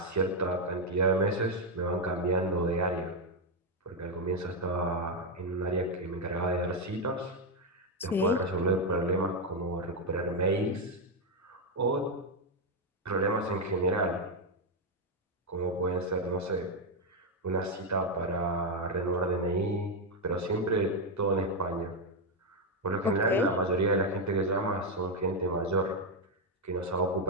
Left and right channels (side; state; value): both; normal; correlation 0.03